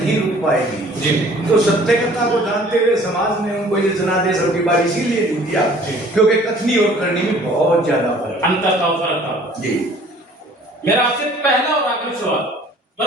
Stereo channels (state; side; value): normal; both; correlation 0.52